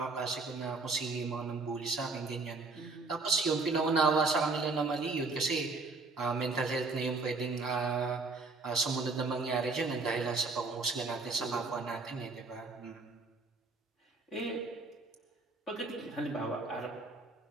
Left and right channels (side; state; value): left; quieter; 3.8 dB